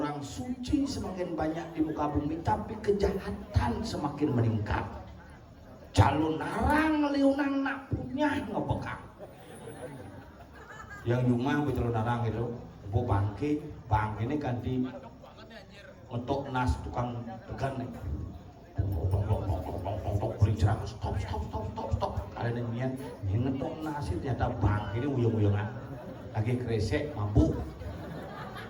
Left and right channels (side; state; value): both; identical; correlation 1.00